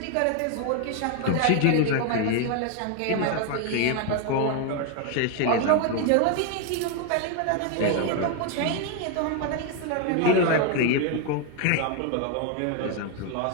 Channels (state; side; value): different; both; correlation 0.01